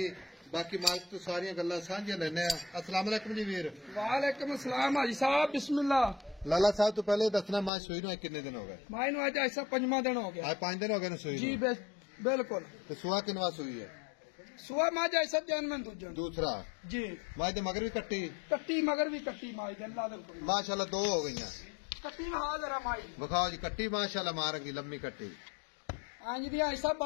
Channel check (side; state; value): right; drops out; at 7.7 s